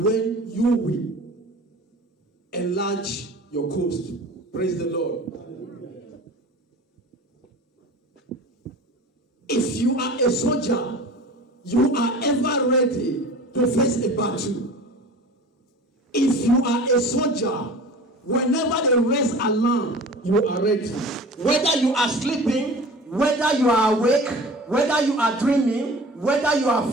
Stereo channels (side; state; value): both; normal; correlation 0.40